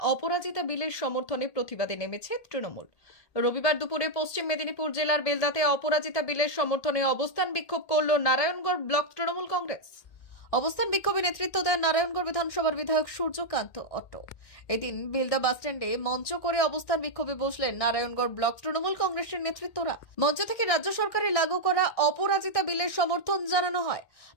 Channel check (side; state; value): right; late; 1.8 ms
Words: অপরাজিতা বিলের সমর্থনে প্রতিবাদে নেমেছে তৃণমূল। রবিবার দুপুরে পশ্চিম মেদিনীপুর জেলার বেলদাতে অপরাজিতা বিলের সমর্থনে অবস্থান বিক্ষোভ করল নারায়ণগড় ব্লক তৃণমূল কংগ্রেস। অবস্থান বিক্ষোভে নেতৃত্ব দেন নারায়ণগড় বিধানসভার বিধায়ক সূর্যকান্ত অট্ট। এদিন বেলদা বাসস্ট্যান্ডে মঞ্চ করে অবস্থান বিক্ষোভে বসলেন নারায়ণগড় ব্লক তৃণমূল কংগ্রেসের নেতৃত্বরা। মঞ্চ থেকে রাজ্য সরকারের লাগু করা অপরাজিতা বিলের সমর্থন জানানো হয়।